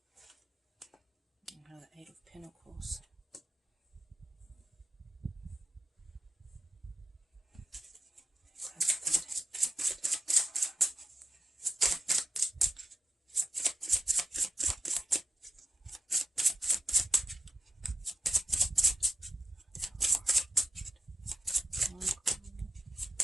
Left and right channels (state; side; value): normal; both; correlation 0.88